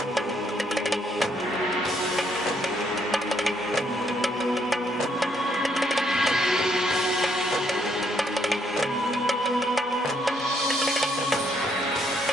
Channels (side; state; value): both; normal; correlation 0.72